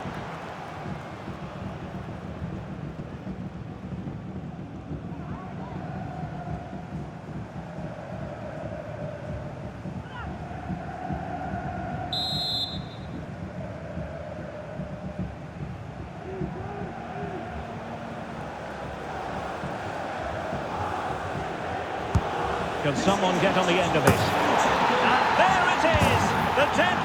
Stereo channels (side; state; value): both; identical; correlation 1.00